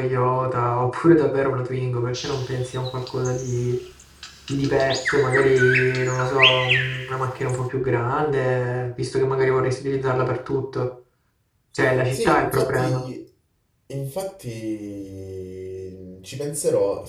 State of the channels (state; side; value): identical; both; correlation 1.00